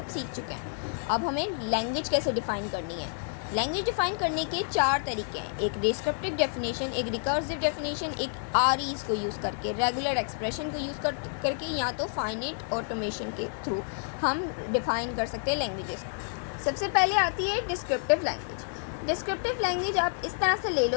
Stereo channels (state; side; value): silent; right; digital silence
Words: सीख चुके हैं। अब हमें लैंग्वेज कैसे डिफ़ाइन करनी है। लैंग्वेज डिफ़ाइन करने के 4 तरीके हैं। एक डिस्क्रिप्टिव डेफिनेशन, एक रिकर्सिव डेफिनेशन, एक आरईज को यूज़ करके, रेगुलर एक्सप्रेशन को यूज़ करके, या तो फाइनाइट ऑटोमेशन के थ्रू हम डिफ़ाइन कर सकते हैं लैंग्वेजेस। सबसे पहले आती है डिस्क्रिप्टिव लैंग्वेज। डिस्क्रिप्टिव लैंग्वेज आप इस तरह से ले